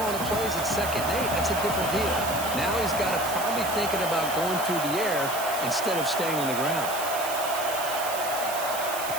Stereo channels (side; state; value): right; noise; hiss, 7 dB below the sound